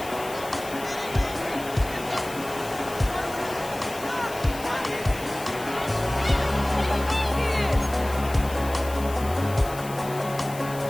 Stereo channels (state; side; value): noise; left; hiss, 15 dB below the sound